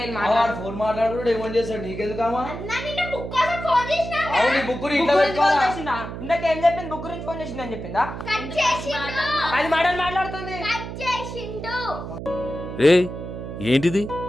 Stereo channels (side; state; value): right; noise; hum, 8 dB below the sound